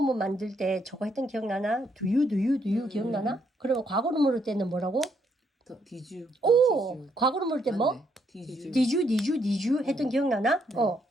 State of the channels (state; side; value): normal; both; correlation 0.74